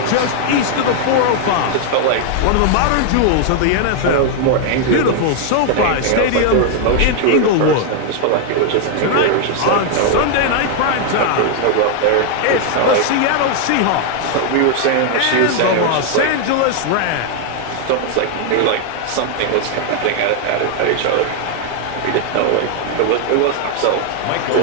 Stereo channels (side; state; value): both; different; correlation 0.00